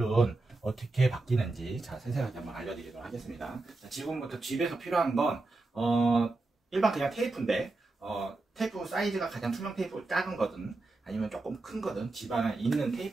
어떻게 바뀌는지 자, 세세하게 한번 알려드리도록 하겠습니다. 자, 지금부터 집에서 필요한 건 일반 그냥 테이프인데 테이프 사이즈가 가장 투명 테이프 작은 거든 아니면 조금 큰 거든 집 안에 있는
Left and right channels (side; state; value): left; quieter; 3.3 dB